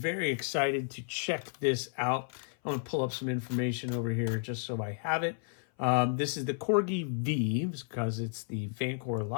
excited to check this out. I'm gonna pull up some information over here just so I have it. This is the Corgi V because it's the Vancore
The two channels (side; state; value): right; silent; 56 dB below the other